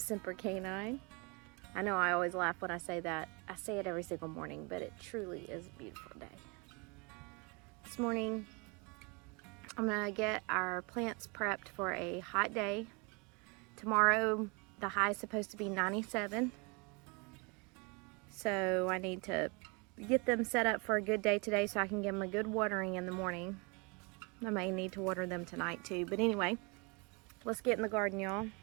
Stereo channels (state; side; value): quieter; left; 30.7 dB